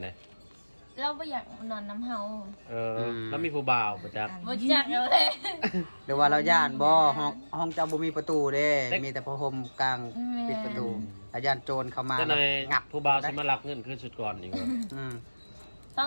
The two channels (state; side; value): inverted; both; correlation -1.00